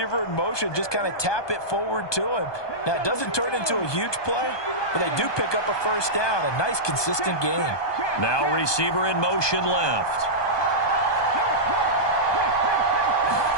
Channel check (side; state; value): right; late; 1.2 ms